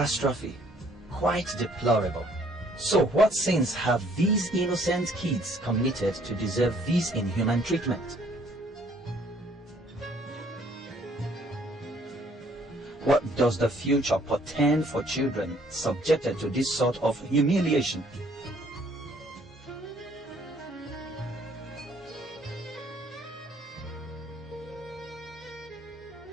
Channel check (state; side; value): normal; both; correlation 0.62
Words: Quite deplorable. So what sins have these innocent kids committed to deserve this inhuman treatment? What does the future portend for children subjected to this sort of humiliation?